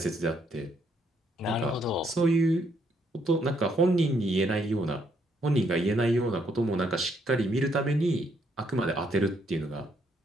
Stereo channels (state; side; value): normal; both; correlation 0.72